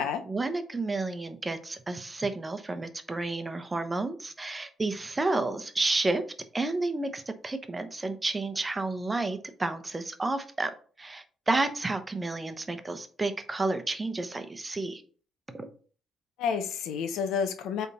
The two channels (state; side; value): normal; both; correlation 0.85